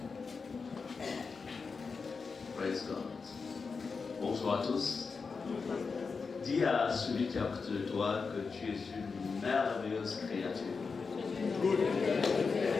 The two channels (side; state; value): right; quieter; 4.9 dB